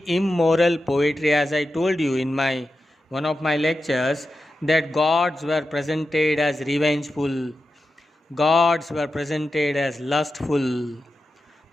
immoral poetry. As I told you in one of my lectures, that gods were presented as revengeful, gods were presented as lustful,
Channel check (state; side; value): normal; both; correlation 0.91